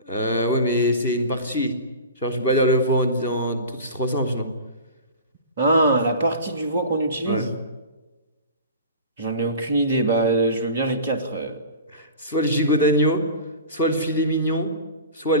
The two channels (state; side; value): inverted; both; correlation -0.36